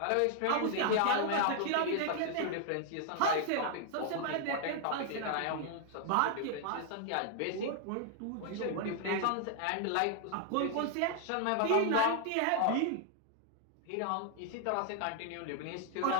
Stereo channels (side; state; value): both; different; correlation 0.00